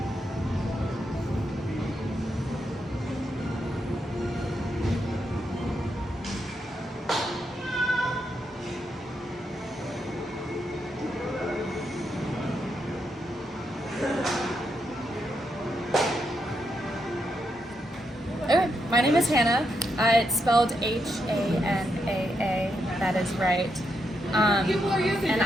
Okay, my name is Hannah. It's spelled Hanaa. That is right. And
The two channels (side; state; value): both; normal; correlation 0.82